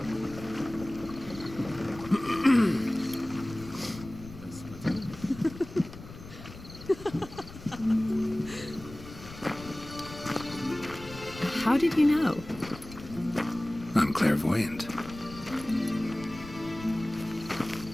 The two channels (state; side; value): noise; left; rumble, 15 dB below the sound